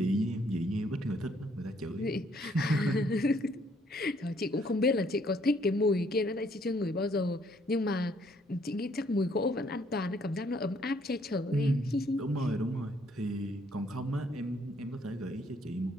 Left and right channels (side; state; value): both; normal; correlation 0.66